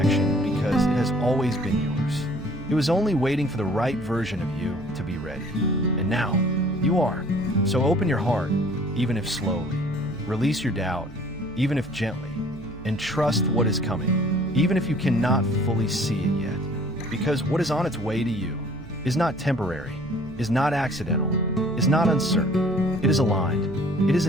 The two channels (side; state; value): right; noise; hum, 18 dB below the sound